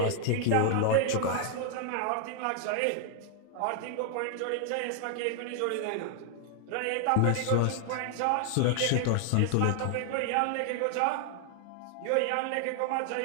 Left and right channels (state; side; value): different; both; correlation 0.00